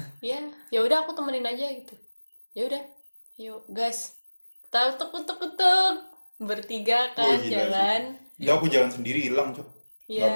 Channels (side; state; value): both; inverted; correlation -1.00